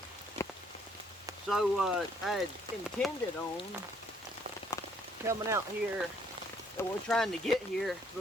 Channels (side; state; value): both; normal; correlation 0.65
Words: So I had intended on coming out here, and we're trying to get here